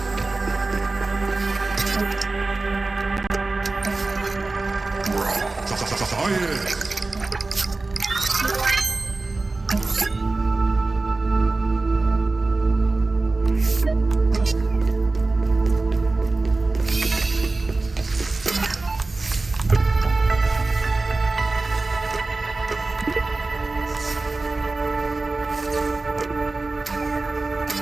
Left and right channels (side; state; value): left; quieter; 3.4 dB